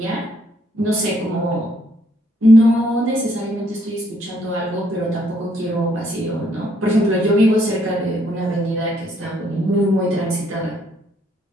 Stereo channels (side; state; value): both; normal; correlation 0.69